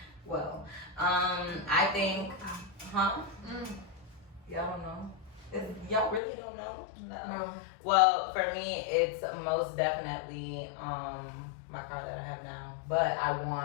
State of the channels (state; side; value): drops out; right; at 6.2 s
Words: well, I think, y'all don't know? Y'all really don't know? No. Well, for me, it's most definitely my car that I have now. But I